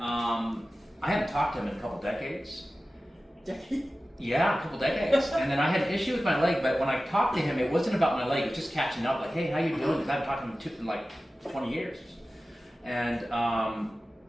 I hadn't talked to him in a couple decades. Yeah, a couple decades. And then I had an issue with my leg, but when I talked to him, it wasn't about my leg, it was just catching up, like, hey, how you doing? Because I haven't talked to him in like 20 years. And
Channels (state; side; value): normal; both; correlation 0.95